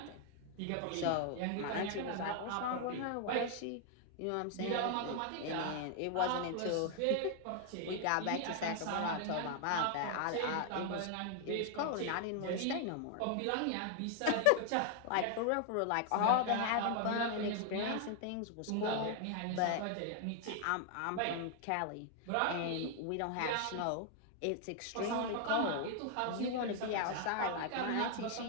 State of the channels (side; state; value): both; different; correlation 0.00